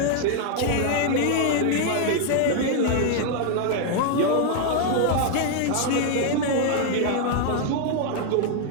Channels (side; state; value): both; different; correlation 0.00